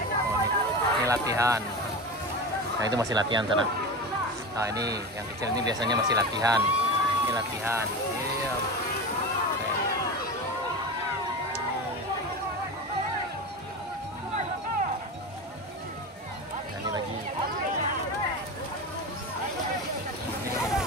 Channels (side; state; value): both; normal; correlation 0.25